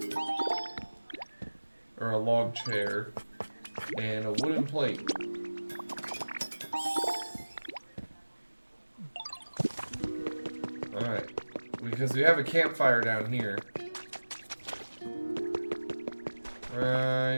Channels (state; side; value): inverted; both; correlation -1.00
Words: Or a log chair. And a wooden plate. Alright. Because we have a campfire down here.